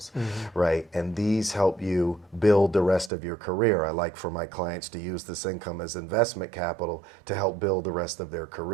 right? And these help you build the rest of your career. I like for my clients to use this income as investment capital to help build the rest of their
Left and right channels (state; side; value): drops out; left; at 3.1 s